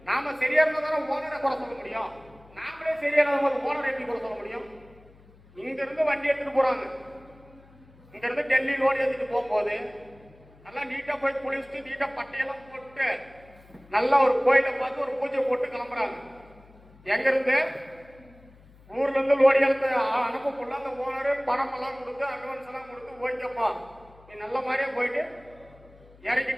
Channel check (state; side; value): noise; left; hum, 25 dB below the sound